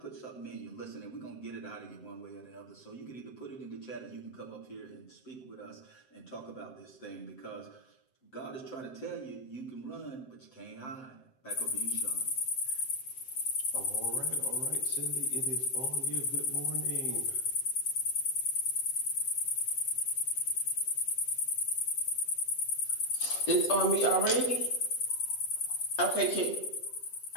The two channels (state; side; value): late; right; 7.8 ms